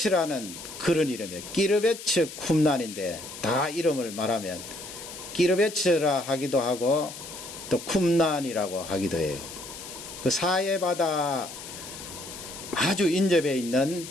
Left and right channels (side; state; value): left; noise; hiss, 12 dB below the sound